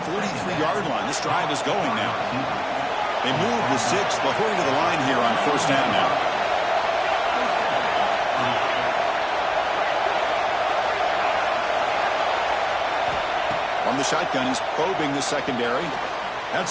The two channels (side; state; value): both; identical; correlation 1.00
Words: line. This drive is going now. They move the 6. They'll hurry to the line here on 1st down now. On the shotgun, he's probing the secondary.